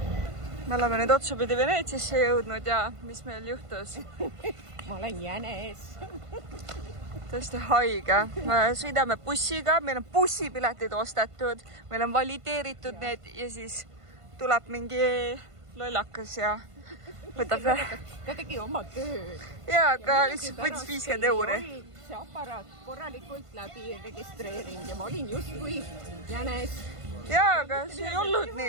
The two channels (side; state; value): left; late; 1.5 ms